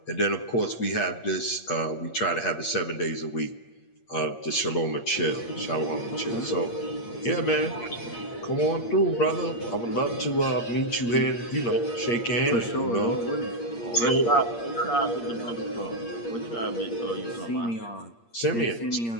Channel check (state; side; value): late; right; 8.6 ms